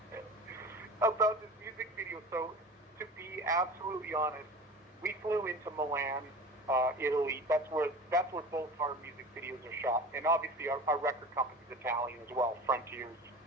music video. So, to be absolutely honest, we flew into Milan, Italy. That's where both our music videos are shot, and obviously our record company is Italian as well, Frontiers,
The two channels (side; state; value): both; normal; correlation 0.36